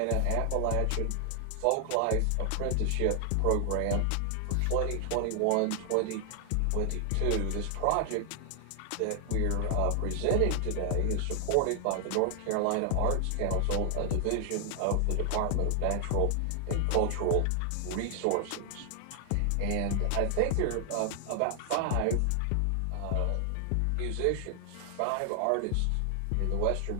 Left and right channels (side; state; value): both; different; correlation 0.00